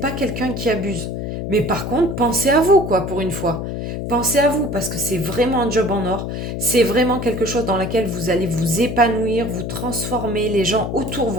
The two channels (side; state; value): left; noise; hum, 4 dB below the sound